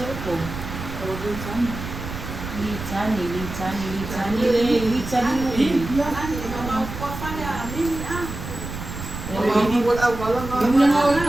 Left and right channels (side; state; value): right; noise; rumble, 9 dB below the sound